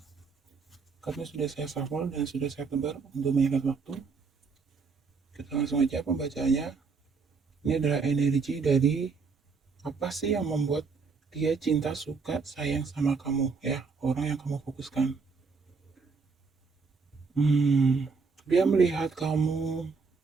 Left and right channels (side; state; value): left; quieter; 4.8 dB